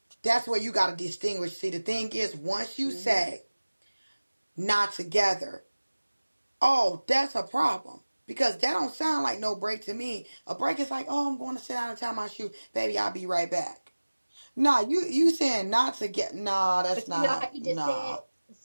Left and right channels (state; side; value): inverted; both; correlation -1.00